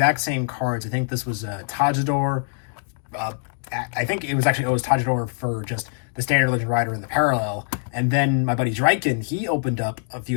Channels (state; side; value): silent; right; digital silence